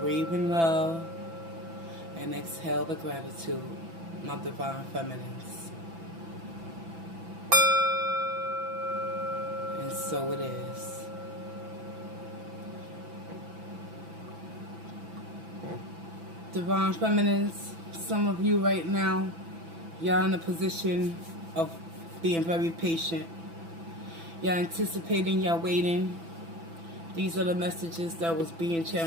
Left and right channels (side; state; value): left; late; 6.0 ms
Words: in love and exhale the gratitude, my Divine Feminines. And so it is. Divine Feminines, some of you right now, y'all in a position of being very patient. Y'all anticipating, y'all waiting. These are the messages that was being